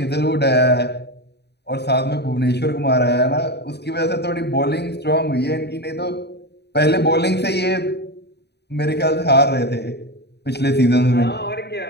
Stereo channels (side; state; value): right; late; 0.49 ms